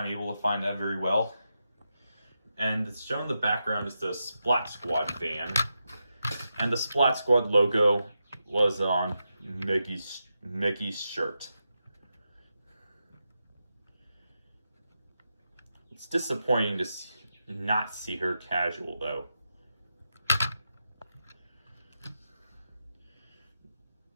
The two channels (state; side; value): inverted; both; correlation -0.87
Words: able to find that very well. And it's shown in the background is the Splat Squad van. And the Splat Squad logo was on Meggy's shirt. It's disappointing to not see her casual, though.